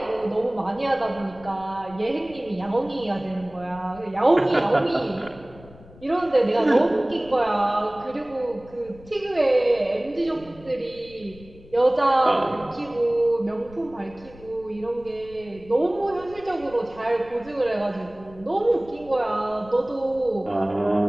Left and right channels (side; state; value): left; noise; rumble, 21 dB below the sound